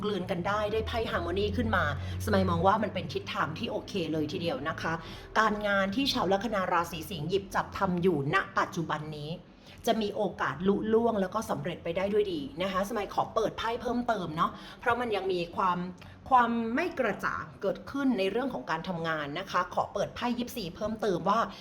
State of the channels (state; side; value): identical; both; correlation 1.00